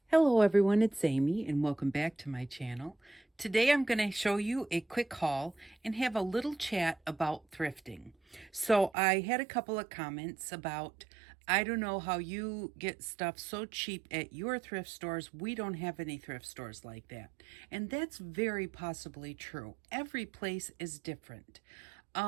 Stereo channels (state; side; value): drops out; left; at 8.9 s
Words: Hello everyone, it's Amy and welcome back to my channel. Today I'm going to show you a quick haul and have a little chat about thrifting. So I had a couple of comments about, I don't know how you get stuff so cheap at your thrift stores. We don't have any thrift stores like that. And that's very possibly true. Every place is different.